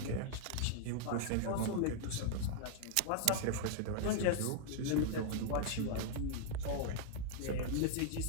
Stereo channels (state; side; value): different; both; correlation 0.00